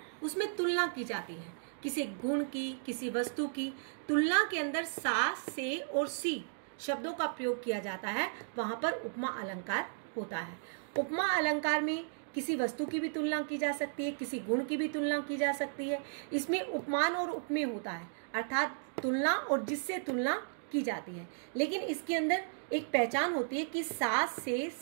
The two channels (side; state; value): left; silent; digital silence